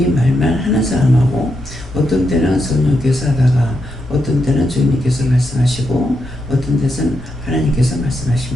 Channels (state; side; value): normal; both; correlation 0.83